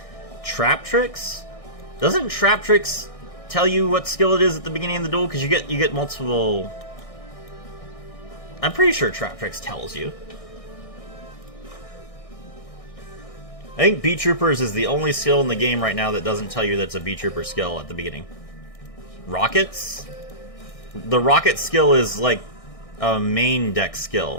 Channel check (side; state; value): right; late; 1.6 ms